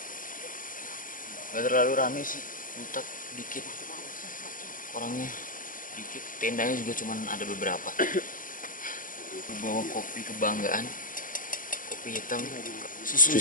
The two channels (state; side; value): late; right; 0.39 ms